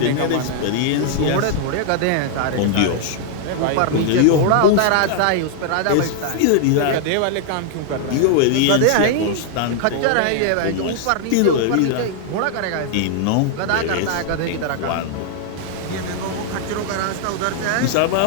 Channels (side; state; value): both; different; correlation 0.00